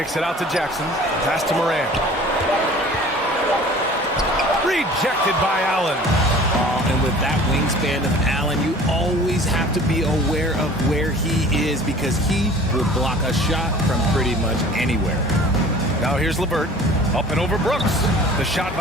it out to Jackson. Pass to Morant. Rejected by Allen. And with that wingspan of Allen, you always have to be aware of where he is, because he will block a shot from pretty much anywhere. Now here's LeVert. Up and over Brooks. The shot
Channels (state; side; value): normal; both; correlation 0.46